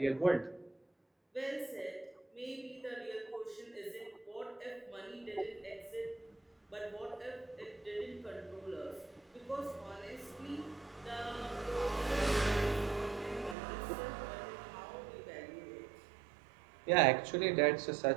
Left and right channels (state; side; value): drops out; left; at 13.6 s